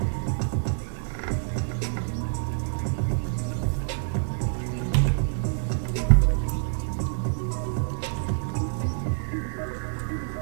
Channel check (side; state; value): left; silent; digital silence